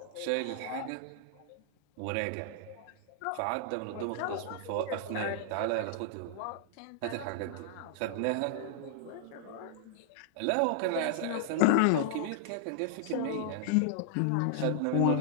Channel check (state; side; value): different; both; correlation -0.01